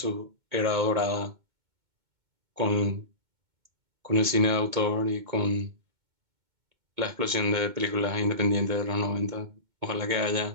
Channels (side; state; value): left; late; 2.2 ms